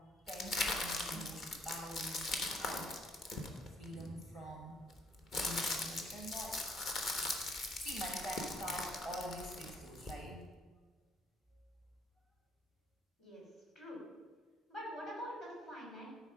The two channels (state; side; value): normal; both; correlation 0.65